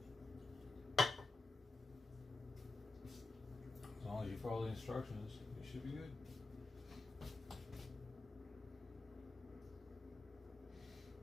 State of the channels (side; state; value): right; quieter; 3.5 dB